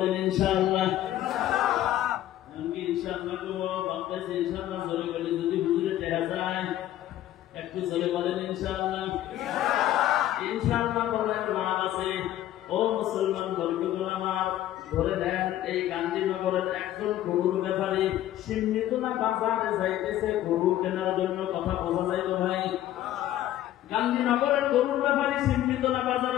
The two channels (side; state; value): right; quieter; 13.1 dB